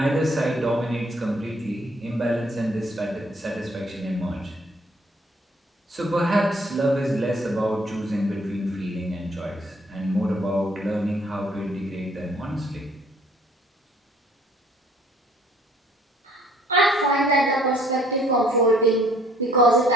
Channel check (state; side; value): normal; both; correlation 0.61